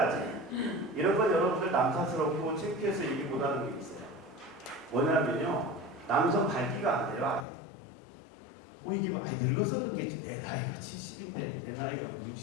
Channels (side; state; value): right; drops out; at 7.5 s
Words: 이런 건 여러분들 남사스럽고 창피해서 얘기 못하는 게 있어요. 뭐냐면요. 남성 발기가 안 돼요. 이게 늙어서 그런 게 내 나이가 70인데 내 나이가